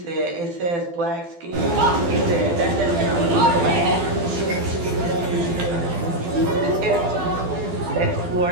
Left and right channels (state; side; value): late; left; 12 ms